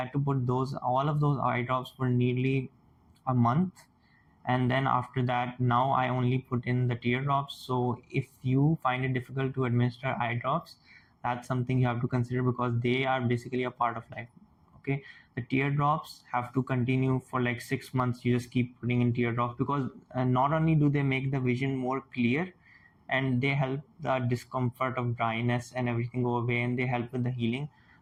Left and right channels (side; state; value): both; identical; correlation 1.00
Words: to put all of those eye drops for nearly a month, and then after that now I only put in the teardrops. So if you find it difficult to administer eye drops, that's something you have to consider, because they are basically a part of life. Okay, the teardrops have to continue for like 6 months. You just keep putting in teardrops, because not only do they make the vision more clear, and they help the discomfort of dryness and everything go away, and they help with the healing.